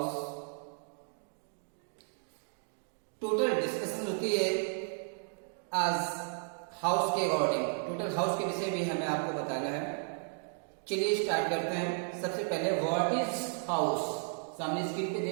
total discussion होती है आज house के according. Total house के विषय भी हमें आपको बताना है। चलिए स्टार्ट करते हैं। सबसे पहले व्हाट इज हाउस, सामने स्क्रीन पे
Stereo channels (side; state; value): left; silent; 55 dB below the other